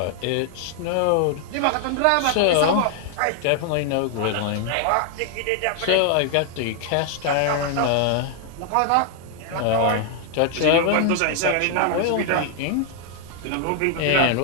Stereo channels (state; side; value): different; both; correlation 0.00